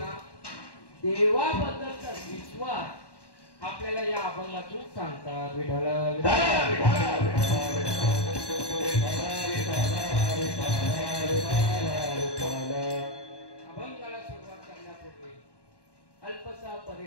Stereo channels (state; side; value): late; right; 1.1 ms